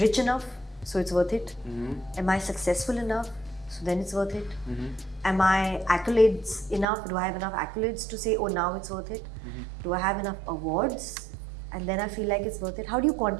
enough? So it's worth it. Am I successful enough? So then it's worth it. Am I accolades enough? Do I have enough accolades to say, oh, now it's worth it? Do I have enough awards? And then I feel like it's worth it. How do you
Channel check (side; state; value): left; drops out; at 6.9 s